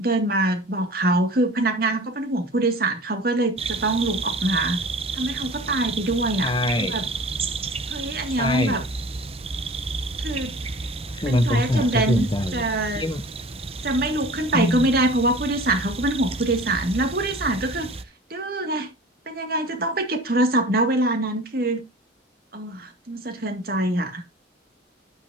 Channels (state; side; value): normal; both; correlation 0.41